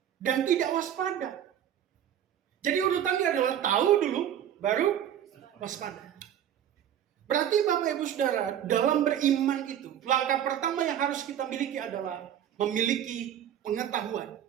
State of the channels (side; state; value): left; quieter; 10.2 dB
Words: dan tidak waspada. Jadi urutannya adalah tahu dulu, baru waspada. Berarti Bapak Ibu Saudara, dalam beriman itu, langkah pertama yang harus kita miliki adalah memiliki pengetahuan